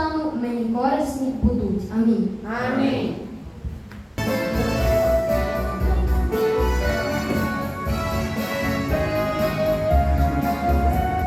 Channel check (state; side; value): identical; both; correlation 1.00